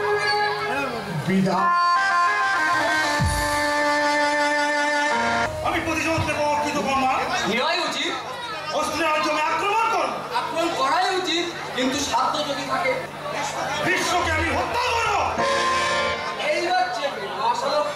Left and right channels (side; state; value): both; identical; correlation 1.00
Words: বিদায়। আমি প্রতিশোধ নেব কৃতকর্মা। নেওয়াই উচিত, অস্ত্রের জমি আক্রমণ কর। আক্রমণ করাই উচিত, কিন্তু সাধ্য যদি থাকে বিশ্বকে আমি হত্যা করবো। এইবার চেপে মহাশালক